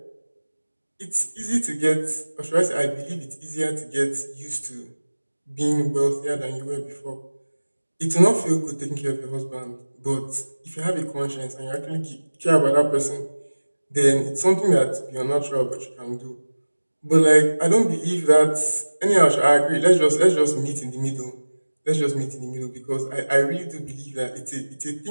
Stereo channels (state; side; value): inverted; both; correlation -1.00